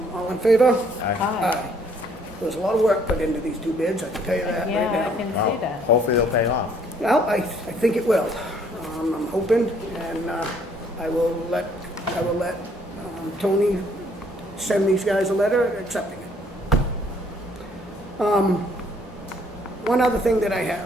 All in favor? Aye. Aye. There's a lot of work put into these 2 bids, I can tell you that right Yeah, I now. can Wow. see that. Hopefully they'll pay off. Well, I think it will. I'm hoping, and I will let Toni send these guys a letter accepting it. One other thing that I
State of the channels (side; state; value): both; normal; correlation 0.63